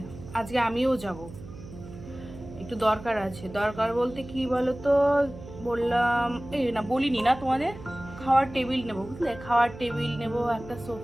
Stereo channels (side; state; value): right; noise; hum, 15 dB below the sound